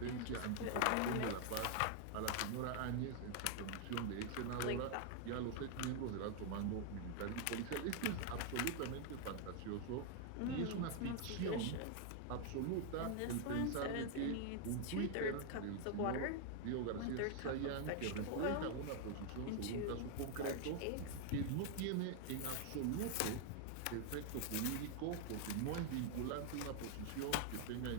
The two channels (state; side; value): different; both; correlation 0.00